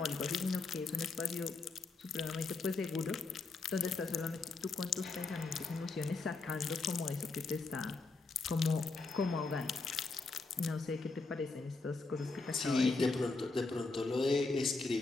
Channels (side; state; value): right; quieter; 3.8 dB